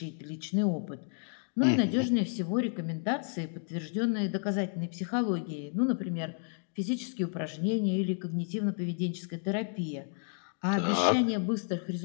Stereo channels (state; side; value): silent; right; 55 dB below the other